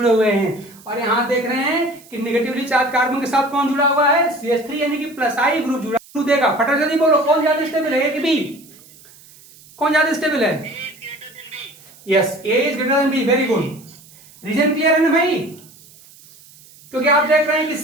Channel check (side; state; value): right; noise; hiss, 24 dB below the sound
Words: हुए हैं। और यहाँ देख रहे हैं कि निगेटिवली चार्ज कार्बन के साथ कौन जुड़ा हुआ है? CH3 यानी कि प्लस आई ग्रुप जुड़ा देगा। फटाफट जल्दी बोलो, कौन ज्यादा स्टेबल है, ए कि बी? कौन ज्यादा स्टेबल है? Yes, A is greater than B, very good. Reason clear है ना भाई? क्योंकि आप देख रहे हैं कि